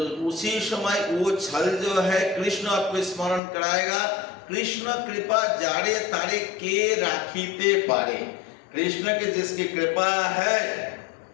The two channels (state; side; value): drops out; right; at 3.4 s